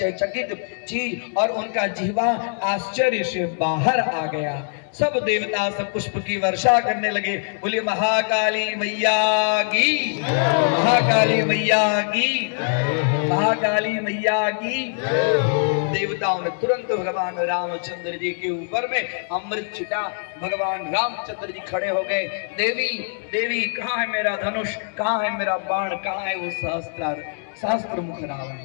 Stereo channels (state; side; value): silent; right; digital silence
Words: चकित चीज और उनका जिह्वा आश्चर्य से बाहर आ गया। सब देवता सब पुष्प की वर्षा करने लगे। बोले महाकाली मैया की, महाकाली मैया की, महाकाली मैया की। देवताओं ने तुरंत भगवान रामचंद्र जी के ऊपर में अमृत छिटा। भगवान रामचंद्र जी खड़े हो गए। देवी देवी कहाँ है मेरा धनुष, कहाँ है मेरा बाण, कहाँ है वो सहस्त्र मुख